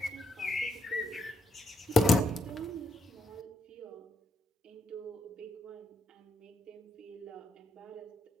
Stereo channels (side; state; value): both; normal; correlation 0.79